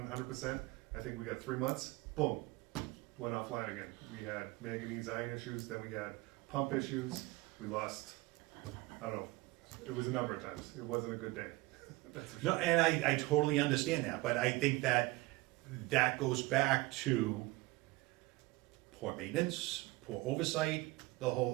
100%, I think we got 3 months, boom, went offline again. We had manganese iron issues, then we had pump issues, we lost, I don't know, it was a number of times, it wasn't a good day. That's for No, sure. and I totally understand that, but I think that goes back to poor maintenance, poor oversight, the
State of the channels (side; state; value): left; quieter; 21.3 dB